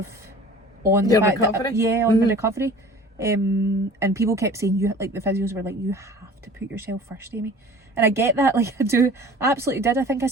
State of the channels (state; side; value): normal; both; correlation 0.44